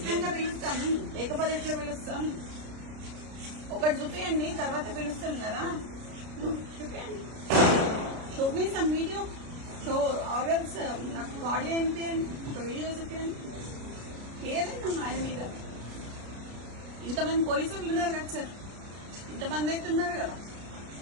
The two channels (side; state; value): left; late; 33 ms